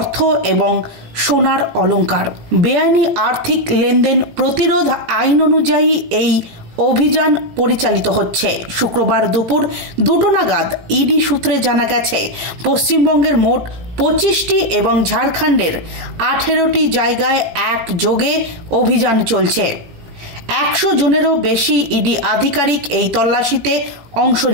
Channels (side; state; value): left; late; 18 ms